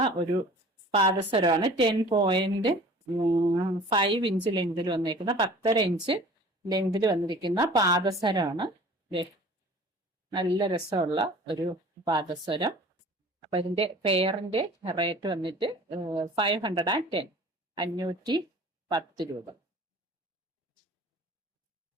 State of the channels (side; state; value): both; normal; correlation 0.45